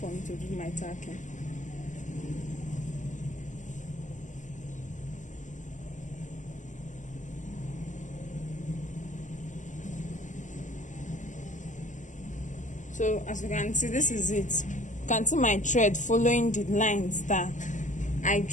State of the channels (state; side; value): late; right; 0.36 ms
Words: me to do my tacking. So as you can see, this is it. You can see my thread following the lines that I